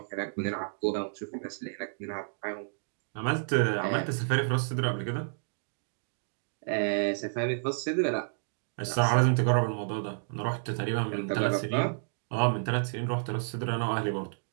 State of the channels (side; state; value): left; silent; digital silence